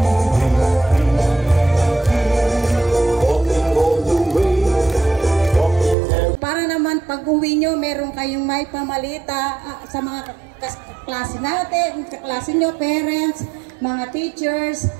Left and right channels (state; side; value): drops out; left; at 6.0 s